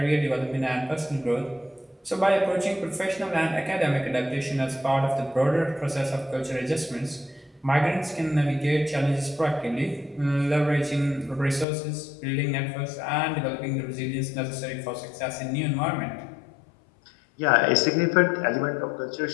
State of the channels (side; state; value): right; drops out; at 11.7 s